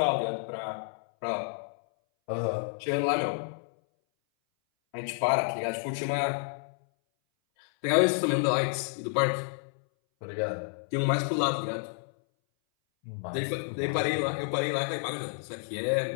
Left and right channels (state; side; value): silent; right; 58 dB below the other